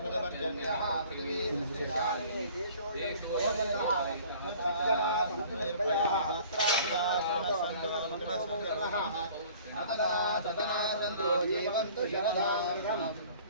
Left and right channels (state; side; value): inverted; both; correlation -0.50